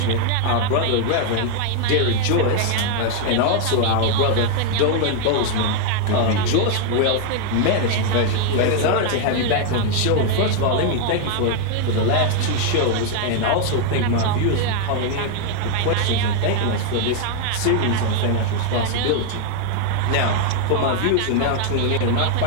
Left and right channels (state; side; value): different; both; correlation 0.01